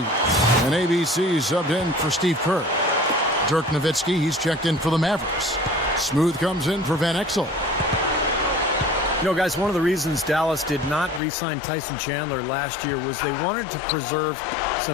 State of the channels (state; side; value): drops out; right; at 11.2 s